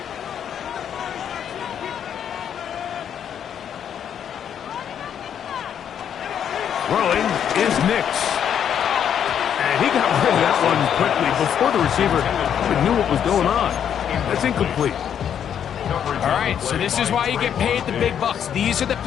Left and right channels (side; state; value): right; quieter; 8.8 dB